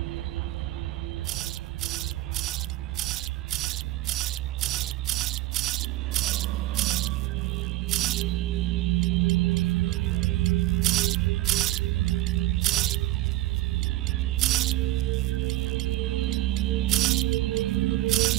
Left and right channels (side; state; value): left; quieter; 16.5 dB